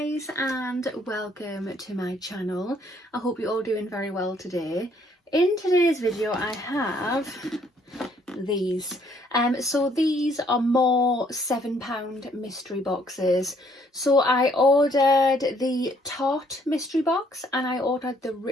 and welcome to my channel. I hope you're all doing very well today. In today's video I have these. So these are more £7 mystery boxes. So I ordered the Tarte mystery box and I ordered the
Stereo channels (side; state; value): both; normal; correlation 0.65